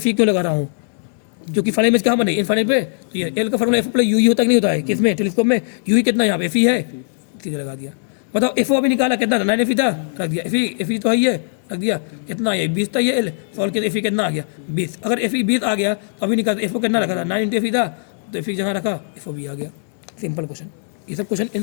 E क्यों लगा रहा हूँ, क्योंकि फाइनल इमेज कहाँ बने इनफाइनाइट पे। तो ये एल का formula F O plus U ही होता कि नहीं होता है, किसमें टेलीस्कोप में, यू ही कितना यहाँ पे एफ ई है, सीधे लगा दिया। बताओ एफ ओ अभी निकाला कितना था 9 एफ ई था, रख दिया, एफ ई तो है ही है, रख दिया, कितना है 20 था, ये एल सॉल्व किया, एफ ई कितना आ गया 20। अगर एफ ई 20 आ गया तो अभी निकाल, एफ ओ कितना रखा था 9 इंटू एफ ई था, तो एफ ई जहाँ रखा एफ ओ भी आ गया। सिंपल क्वेश्चन, ये सब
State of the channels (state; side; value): silent; right; digital silence